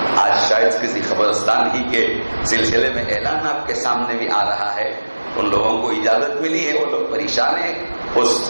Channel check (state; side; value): inverted; both; correlation -1.00